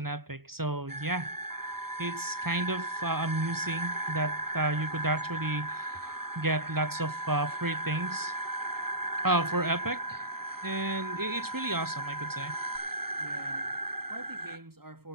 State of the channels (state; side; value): late; left; 0.94 ms